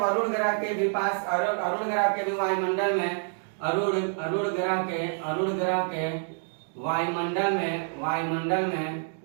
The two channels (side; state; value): left; silent; 59 dB below the other